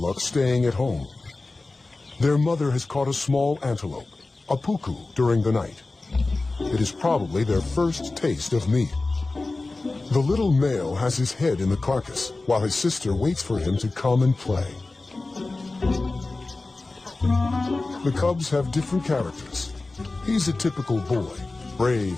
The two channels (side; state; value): right; quieter; 3.3 dB